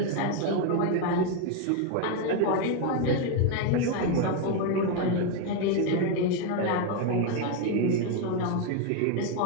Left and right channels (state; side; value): different; both; correlation 0.01